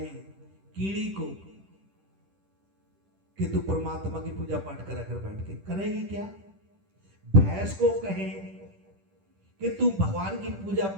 कीड़ी को कि तू परमात्मा की पूजा पाठ करा कर बैठ के, करेगी क्या? भैंस को कहें कि तू भगवान की पूजा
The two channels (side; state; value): left; late; 10 ms